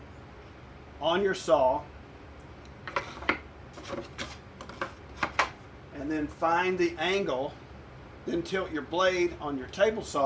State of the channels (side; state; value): both; identical; correlation 1.00